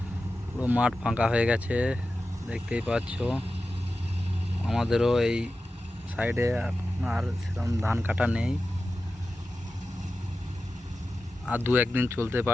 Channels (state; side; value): normal; both; correlation 0.93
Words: পুরো মাঠ ফাঁকা হয়ে গেছে, দেখতেই পাচ্ছ। আমাদেরও এই সাইডে এখন আর সেরকম ধান কাটা নেই, আর দু একদিন চলতে